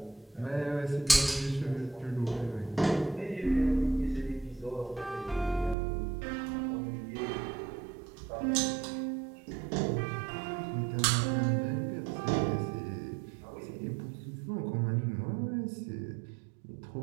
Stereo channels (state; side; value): drops out; left; at 5.8 s